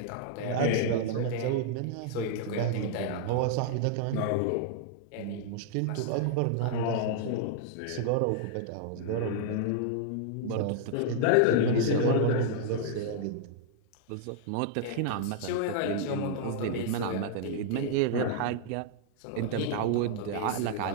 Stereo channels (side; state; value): both; different; correlation -0.01